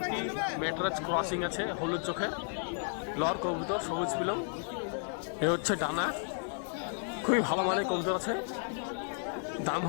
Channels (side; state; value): right; silent; 55 dB below the other